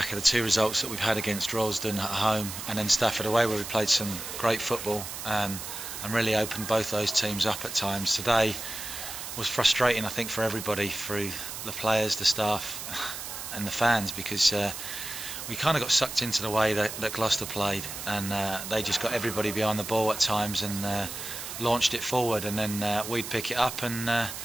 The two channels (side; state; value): right; noise; hiss, 8 dB below the sound